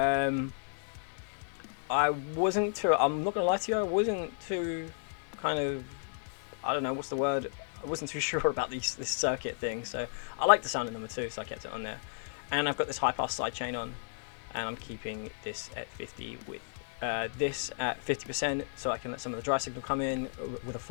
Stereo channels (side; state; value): right; silent; digital silence